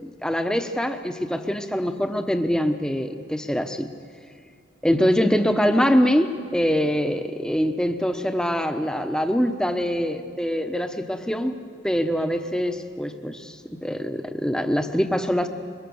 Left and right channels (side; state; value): both; normal; correlation 0.91